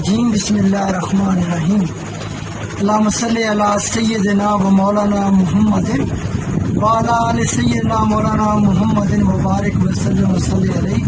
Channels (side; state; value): both; identical; correlation 1.00